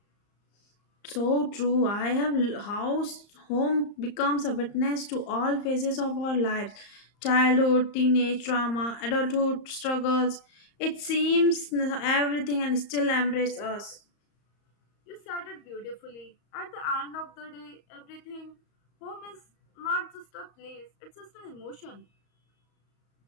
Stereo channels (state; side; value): late; right; 34 ms